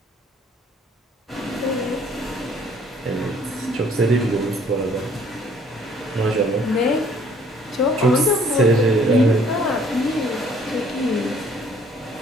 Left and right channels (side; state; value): both; normal; correlation 0.59